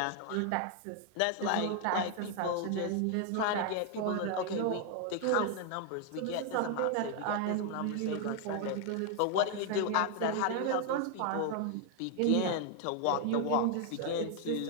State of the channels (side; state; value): both; different; correlation 0.00